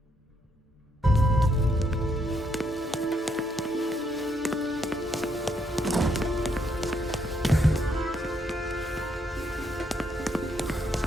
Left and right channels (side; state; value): both; normal; correlation 0.74